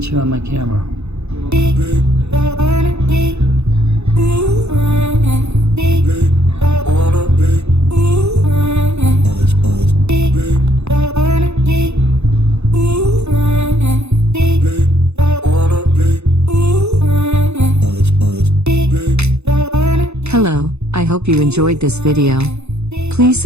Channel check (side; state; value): left; late; 0.81 ms